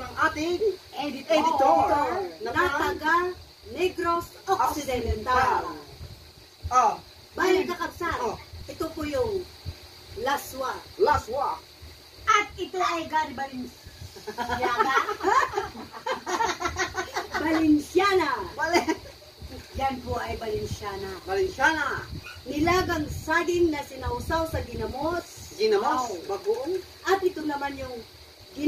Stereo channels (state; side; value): identical; both; correlation 1.00